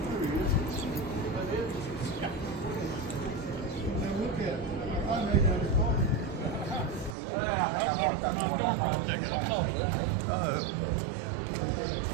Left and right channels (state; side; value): drops out; left; at 7.2 s